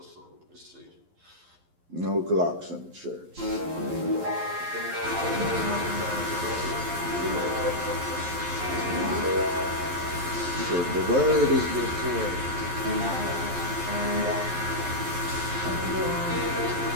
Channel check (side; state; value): left; late; 11 ms